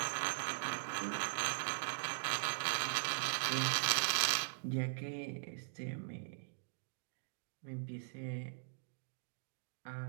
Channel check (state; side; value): silent; left; digital silence